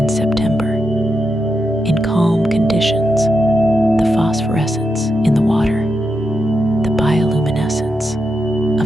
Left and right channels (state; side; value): normal; both; correlation 0.85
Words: September. In calm conditions, the phosphorescence in the water, the bioluminescence